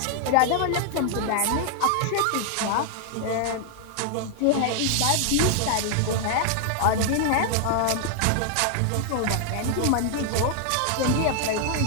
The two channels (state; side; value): different; both; correlation 0.00